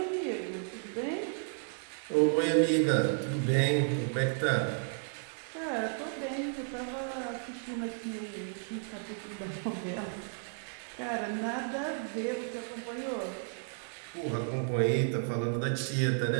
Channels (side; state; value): left; silent; 56 dB below the other